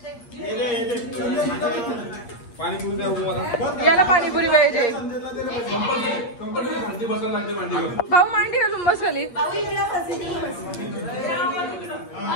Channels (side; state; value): right; late; 8.5 ms